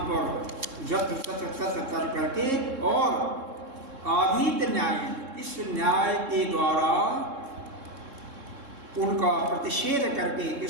पर जत्र तत्र तत्र कर करके और अभीत न्याय, इस न्याय के द्वारा उनका प्रतिषेध करके,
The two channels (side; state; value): left; late; 3.7 ms